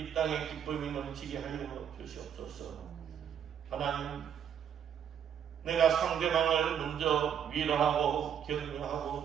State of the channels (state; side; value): quieter; left; 8.7 dB